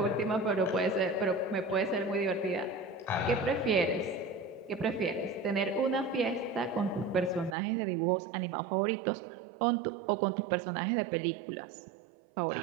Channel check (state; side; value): drops out; left; at 7.6 s